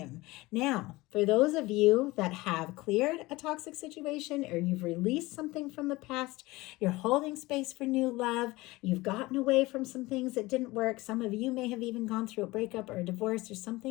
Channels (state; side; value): quieter; right; 20.7 dB